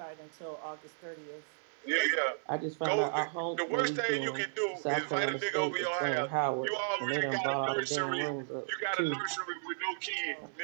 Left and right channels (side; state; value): left; silent; 55 dB below the other